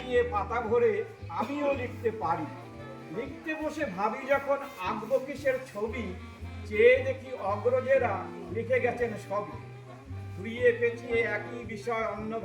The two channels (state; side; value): identical; both; correlation 1.00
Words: পাতা ভরে আমিও লিখতে পারি। লিখতে বসে ভাবি যখন আঁকবো কিসের ছবি, চেয়ে দেখি অগ্রজেরা লিখে গেছেন সবই। ঘুরিয়ে পেঁচিয়ে একই বিষয়